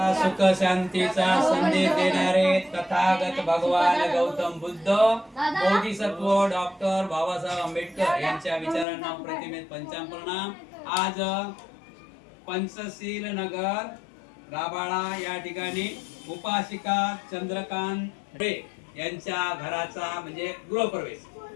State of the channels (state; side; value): drops out; right; at 8.8 s